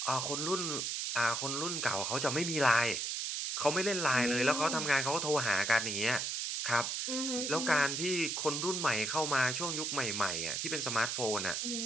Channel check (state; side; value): noise; right; hiss, 1 dB below the sound